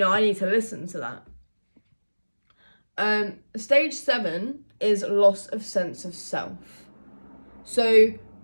I need to listen to that. Stage 7 is loss of sense of self. So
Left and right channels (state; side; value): inverted; both; correlation -1.00